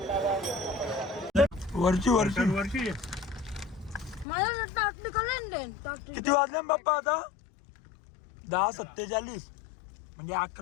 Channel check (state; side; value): drops out; right; at 4.2 s